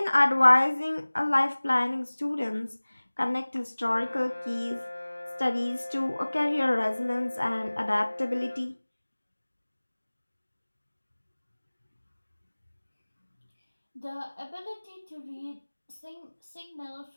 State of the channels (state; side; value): inverted; both; correlation -1.00